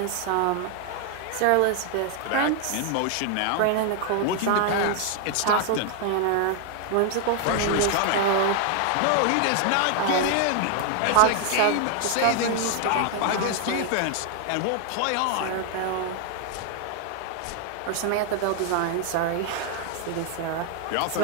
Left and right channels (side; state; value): both; different; correlation 0.00